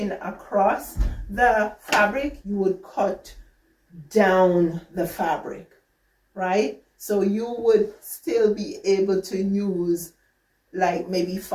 across the fabric, you would cut down the fabric, right? So you would still be able to use like maybe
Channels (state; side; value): identical; both; correlation 1.00